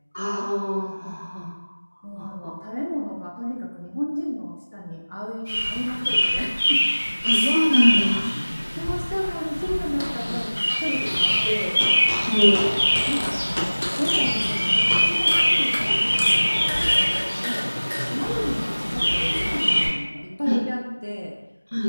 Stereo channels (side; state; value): both; inverted; correlation -1.00